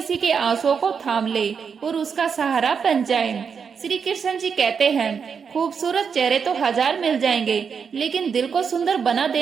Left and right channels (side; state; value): left; quieter; 6.4 dB